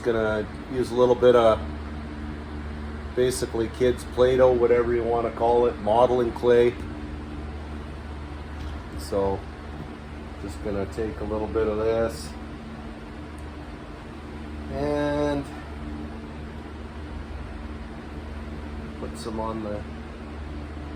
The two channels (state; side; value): identical; both; correlation 1.00